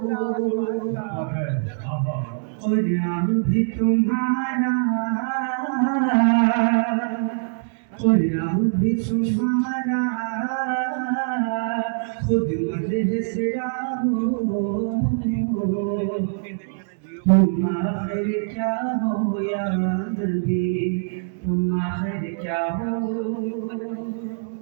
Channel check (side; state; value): left; silent; 63 dB below the other